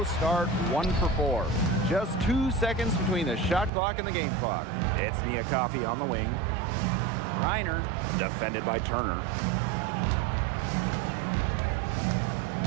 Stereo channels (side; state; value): left; drops out; at 3.7 s